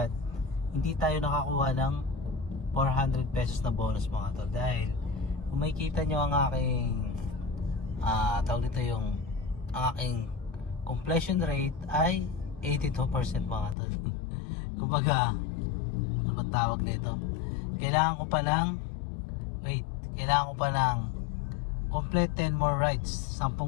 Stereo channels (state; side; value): drops out; right; at 13.8 s